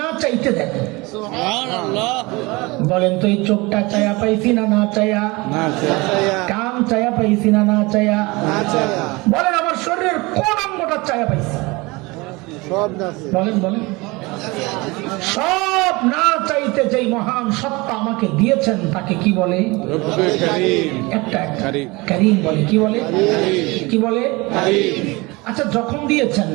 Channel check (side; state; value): left; quieter; 24.1 dB